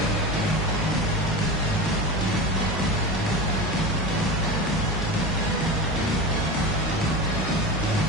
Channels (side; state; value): both; normal; correlation 0.26